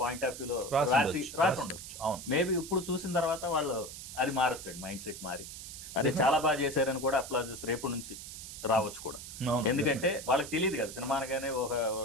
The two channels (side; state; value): right; noise; hiss, 11 dB below the sound